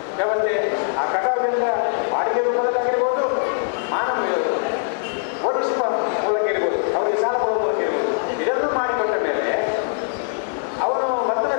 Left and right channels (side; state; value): right; silent; digital silence